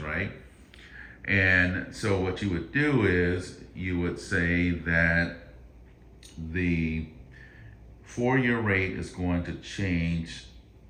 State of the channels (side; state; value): both; identical; correlation 1.00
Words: And so what you would do is you would say that the 4-year rate is going to change